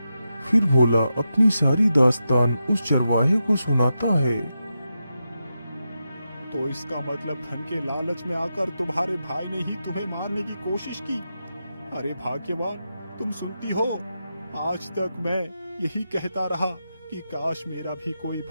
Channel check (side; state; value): both; inverted; correlation -0.88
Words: फिर भोला अपनी सारी दास्तान उस चरवाहे को सुनाता है। तो इसका मतलब धन के लालच में आकर तुम्हारे भाई ने ही तुम्हें मारने की कोशिश की। अरे भाग्यवान, तुम सुनती हो, आज तक मैं यही कहता रहा कि काश मेरा भी कोई